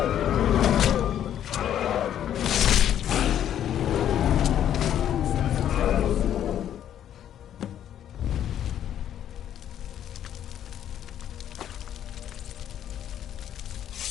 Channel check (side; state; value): right; quieter; 10.4 dB